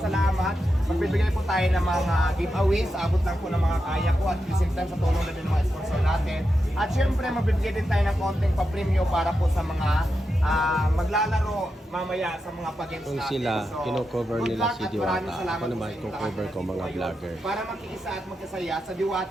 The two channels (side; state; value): both; normal; correlation 0.88